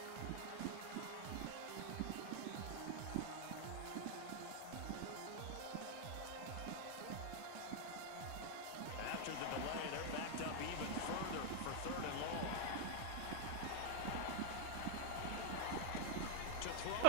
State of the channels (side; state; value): both; different; correlation 0.00